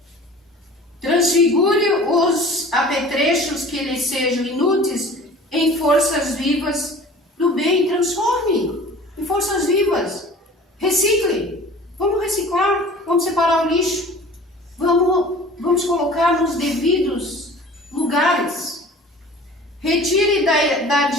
Transfigure os apetrechos que lhe sejam inúteis em forças vivas do bem. Transforme em forças vivas. Recicle. Vamos reciclar, vamos separar o lixo. Vamos colocar nos devidos lugares. Retire da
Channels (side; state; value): both; normal; correlation 0.44